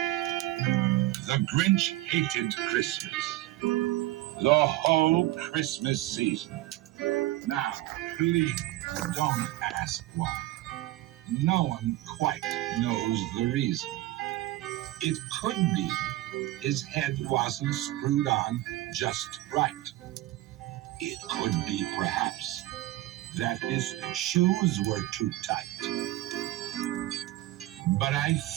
The Grinch hated Christmas, the whole Christmas season. Now, please don't ask why. No one quite knows the reason. It could be his head wasn't screwed on just right. It could be, perhaps, that his shoes were too tight. But I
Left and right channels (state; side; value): quieter; left; 16.7 dB